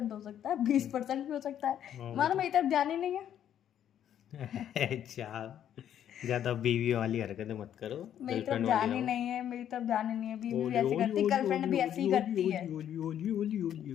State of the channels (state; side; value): quieter; right; 10.2 dB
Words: हो सकता है, 20% भी हो सकता है। वो मानो तो मेरी तरफ ध्यान ही नहीं है। अच्छा, ज्यादा बीवी वाली हरकतें मत करो, मेरी तरफ गर्लफ्रेंड वाली ध्यान ही रहो। नहीं है, मेरी तरफ ध्यान ही नहीं है। बीवी भी ओली ऐसी ओली करती, ओली गर्लफ्रेंड ओली भी ऐसी ओली ही ओली करती है। ओली ओली ओली ओली ओली